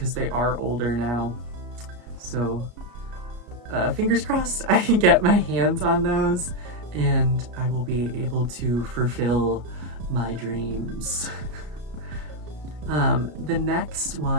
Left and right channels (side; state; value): left; late; 33 ms